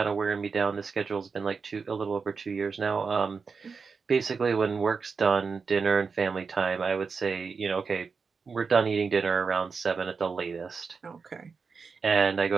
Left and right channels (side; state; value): left; quieter; 5.1 dB